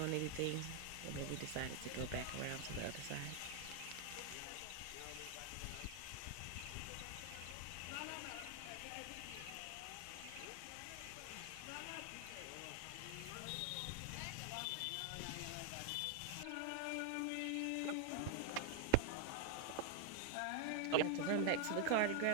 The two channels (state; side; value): different; both; correlation 0.00